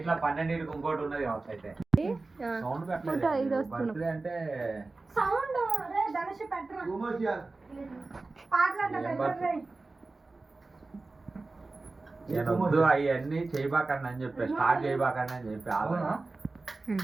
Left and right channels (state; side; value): quieter; left; 3.5 dB